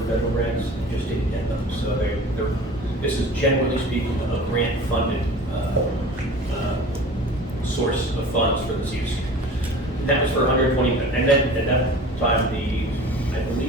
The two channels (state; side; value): normal; both; correlation 0.40